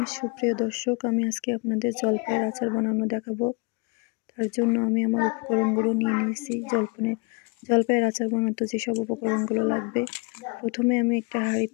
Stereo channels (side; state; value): right; quieter; 31.1 dB